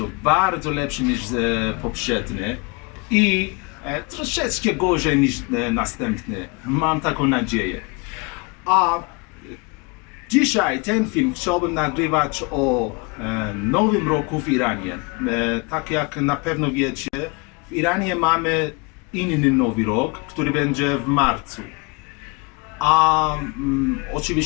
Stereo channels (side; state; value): right; quieter; 29.1 dB